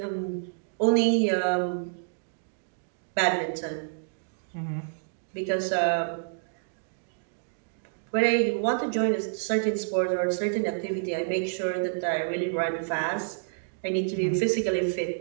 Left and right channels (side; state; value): left; silent; digital silence